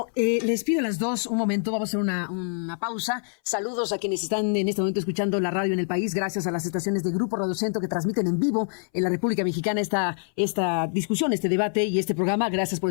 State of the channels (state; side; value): silent; right; 60 dB below the other